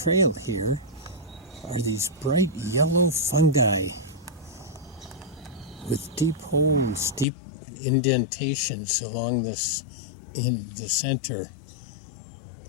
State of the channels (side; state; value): right; drops out; at 7.2 s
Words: here are these bright yellow fungi with deep holes, deep indentations along this in the center.